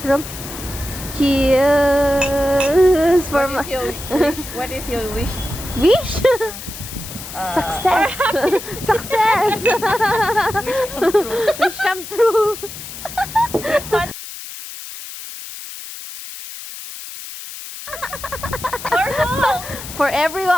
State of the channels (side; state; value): left; noise; hiss, 11 dB below the sound